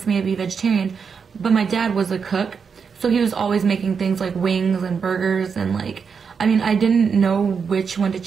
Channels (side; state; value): left; quieter; 6.0 dB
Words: me to be vegetarian. But my dad was a cook, so he was always making things like wings and burgers, and like, I mean, I didn't know which one to